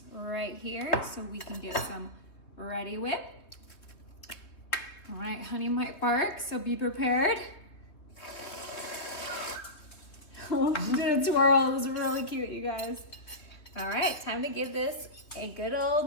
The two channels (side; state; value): right; late; 3.4 ms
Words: right here so we can get some ready whip. All right, honey might bark, so be prepared. Oh, she did a twirl. It was really cute, you guys. All right, time to give this a good